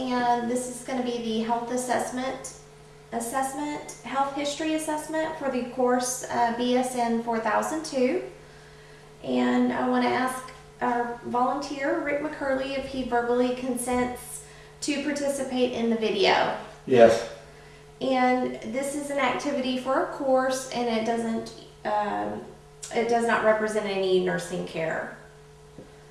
this is going to be the health health history assessment for the course BSN 4002. And I want to ask our volunteer, Rick McCurley, if he verbally consents to participate in the video. Yes. And this is an activity for a course, and it does not represent any nursing care.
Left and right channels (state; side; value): identical; both; correlation 1.00